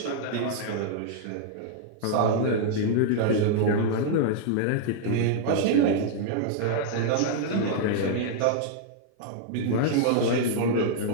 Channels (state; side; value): different; both; correlation -0.01